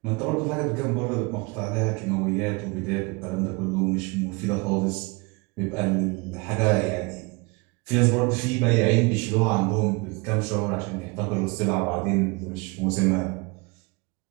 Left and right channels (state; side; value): quieter; left; 28.0 dB